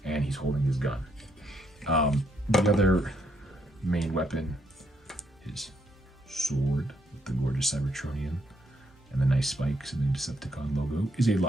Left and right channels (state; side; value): normal; both; correlation 0.74